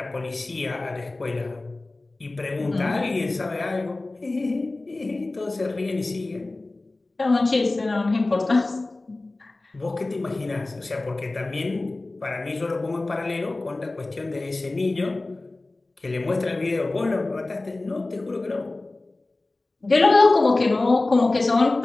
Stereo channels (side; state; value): right; quieter; 3.1 dB